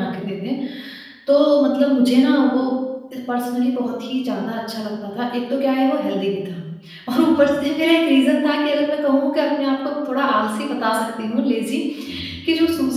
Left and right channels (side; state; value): both; identical; correlation 1.00